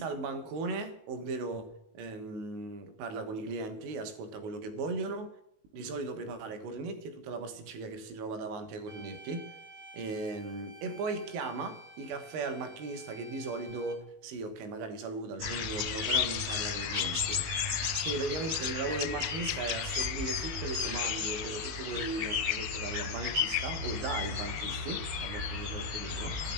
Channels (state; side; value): late; left; 19 ms